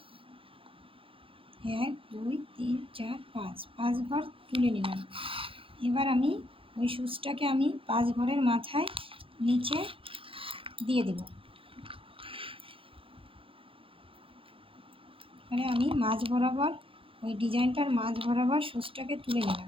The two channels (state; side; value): late; left; 0.26 ms